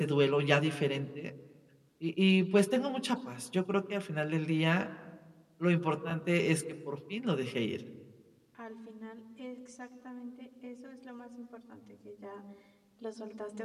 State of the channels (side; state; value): both; identical; correlation 1.00